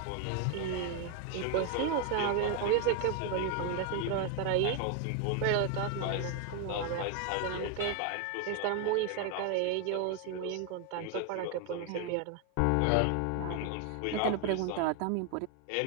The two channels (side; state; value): both; different; correlation 0.01